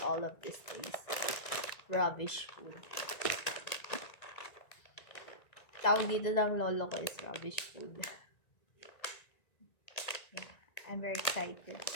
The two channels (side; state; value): right; late; 1.9 ms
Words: all of these things. Rubbish food. Tawag dito ng lolo ko is rubbish food. Yeah, I'm very excited.